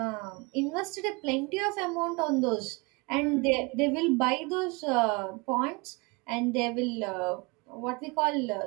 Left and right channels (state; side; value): quieter; left; 27.8 dB